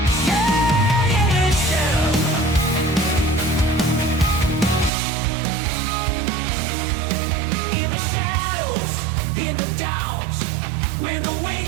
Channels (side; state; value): left; drops out; at 4.9 s